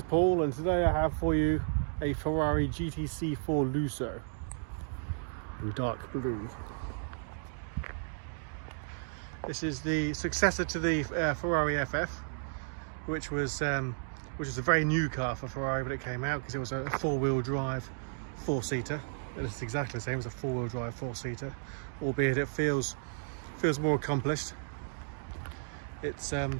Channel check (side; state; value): left; silent; digital silence